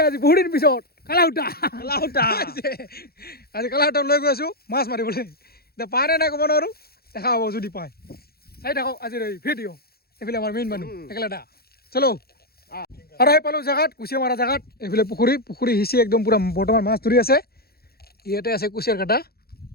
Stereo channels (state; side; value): late; right; 0.45 ms